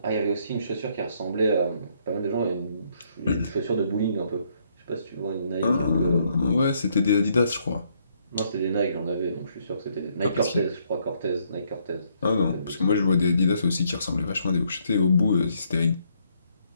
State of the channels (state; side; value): inverted; both; correlation -0.71